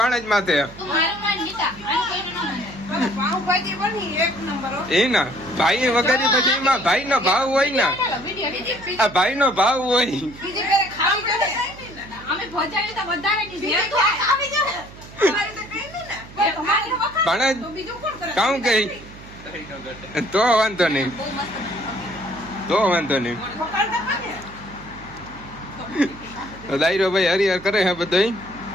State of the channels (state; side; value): noise; right; hum, 18 dB below the sound